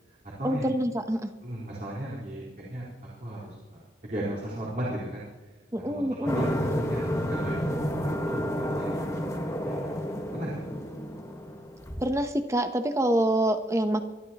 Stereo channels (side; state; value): both; normal; correlation 0.77